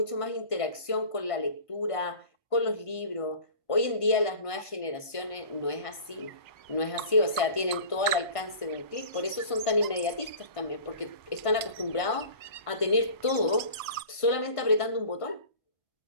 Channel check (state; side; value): late; right; 1.5 ms